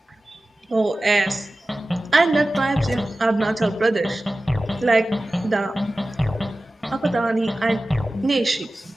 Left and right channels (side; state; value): both; normal; correlation 0.96